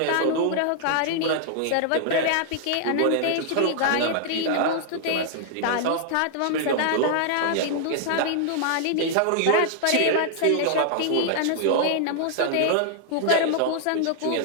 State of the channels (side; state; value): both; different; correlation -0.01